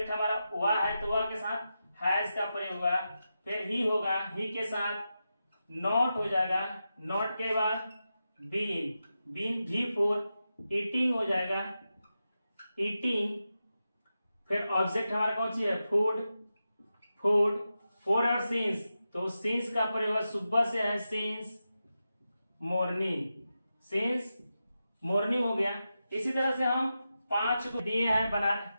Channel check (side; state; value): both; inverted; correlation -0.90